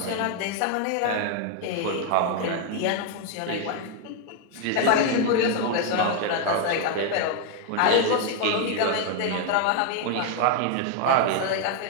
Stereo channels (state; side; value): different; both; correlation 0.01